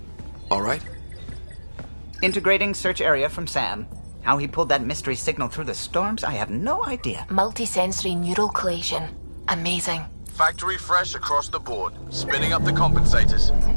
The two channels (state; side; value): inverted; both; correlation -1.00